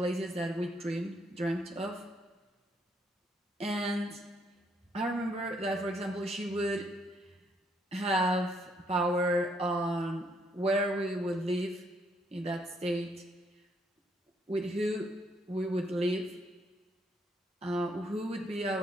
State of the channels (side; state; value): both; normal; correlation 0.72